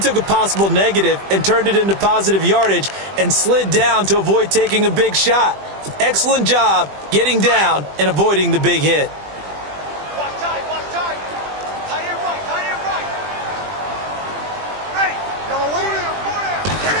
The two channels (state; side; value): late; left; 20 ms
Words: a possible negative and turned it into positive yardage and slid down to avoid taking a big shot. Excellent job getting down and avoiding the big hit. Watch tight. Tight end right. Ready. Yellow waiting.